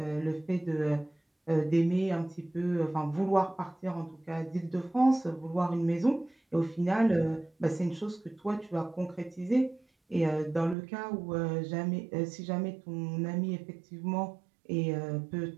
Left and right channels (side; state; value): left; drops out; at 10.8 s